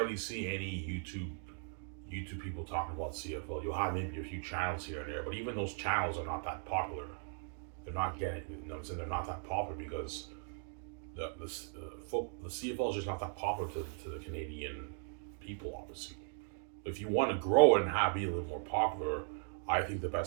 see any YouTube people talking about CFL. You'll have maybe a few channels here and there, but even those channels are not that popular. They're not getting, you know what I'm saying? They're not that popular because the CFL is just not that popular to the Canadian people, obviously. If you want to grow it and be a little more popular, I think the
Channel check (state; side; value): silent; left; 52 dB below the other